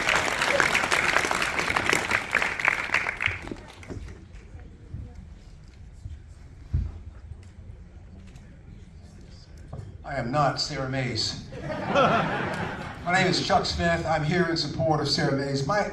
I am not Sarah Mays. My name is Chuck Smith. I'm here in support of Sarah Mays.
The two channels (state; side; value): identical; both; correlation 1.00